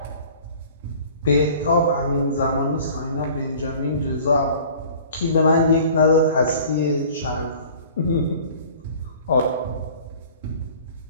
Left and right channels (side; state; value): both; inverted; correlation -0.47